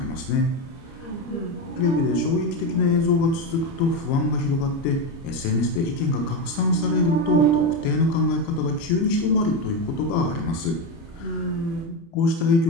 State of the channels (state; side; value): late; right; 30 ms